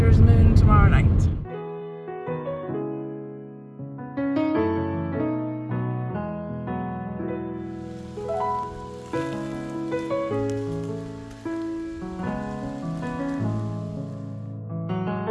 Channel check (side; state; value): both; identical; correlation 1.00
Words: moon tomorrow night.